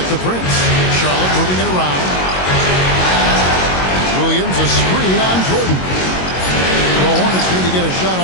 the Prince. Charlotte moving it around. Williams, a screen on Jordan. The Hornets need to get a shot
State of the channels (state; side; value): late; right; 22 ms